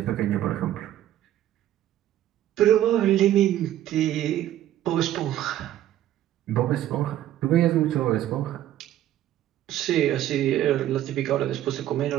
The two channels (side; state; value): left; quieter; 12.6 dB